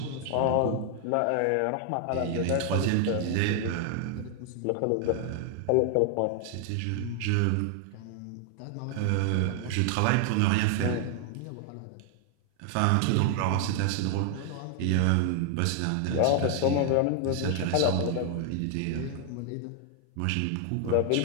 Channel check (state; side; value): different; both; correlation 0.00